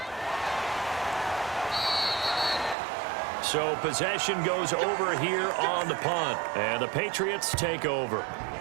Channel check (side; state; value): left; drops out; at 2.8 s